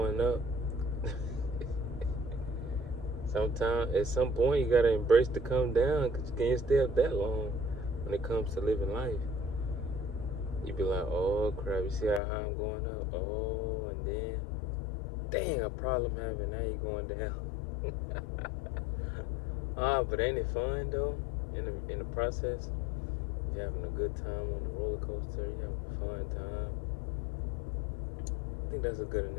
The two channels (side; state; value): right; drops out; at 12.2 s